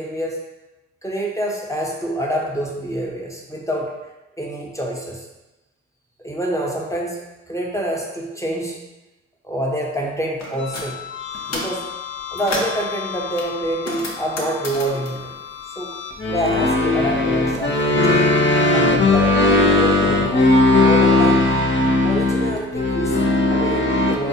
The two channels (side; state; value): both; normal; correlation 0.45